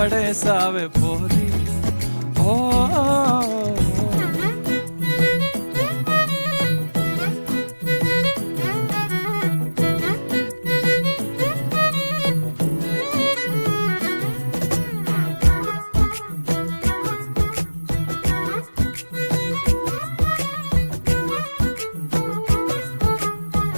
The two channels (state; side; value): inverted; both; correlation -1.00